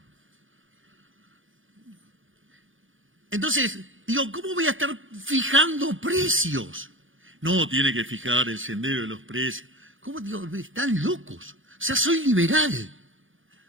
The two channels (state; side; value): late; left; 0.58 ms